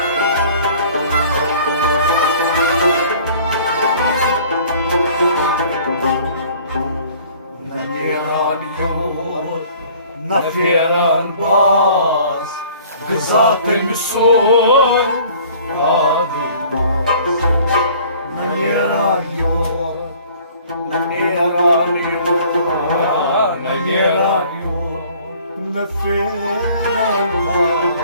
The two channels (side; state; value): both; inverted; correlation -0.52